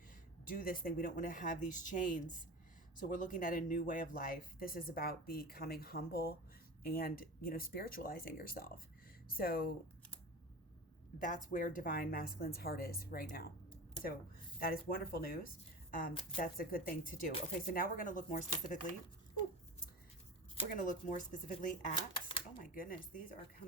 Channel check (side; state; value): both; normal; correlation 0.30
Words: do this thing. We don't want to have these chains. So we're looking at a new way of life. This is about becoming humble and, spiritualizing yourself. So that's where divine masculine's heart is right now. So that is wonderful news. That's a good thing to do. Okay, so now we're going to look more specifically. We're going to look more specifically at, oh my goodness, these are